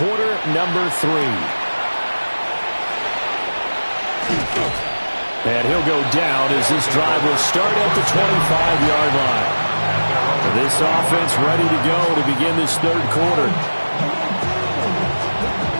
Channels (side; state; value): both; inverted; correlation -1.00